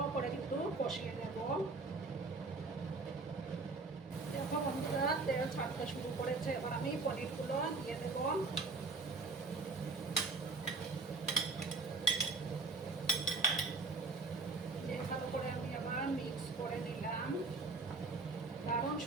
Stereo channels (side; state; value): left; quieter; 3.8 dB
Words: করে কিন্তু কষিয়ে নেব। দেখো বন্ধুরা তেল ছাড়তে শুরু করেছে, এবার আমি পনিরগুলো দিয়ে দেব। দিয়ে ভালো করে আমি আবার মিক্স করে নিলাম। দারুণ